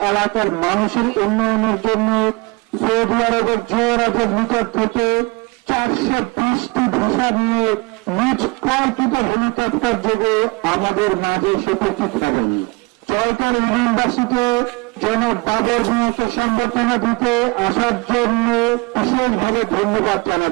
এলাকার মানুষের উন্নয়নের জন্য সৌদি আরবের যুবরাজের নিকট থেকে 420টি ভিসা নিয়ে নিজ কল্পিত হেলিকপ্টার যোগে আমাদের মাঝে উপস্থিত হবেন। জয়কার ইউনিভার্সিটি জনাব বাবর মিয়াকে সংবর্ধনা দিতে আসার জন্য বিশেষভাবে ধন্যবাদ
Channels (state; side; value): quieter; left; 27.2 dB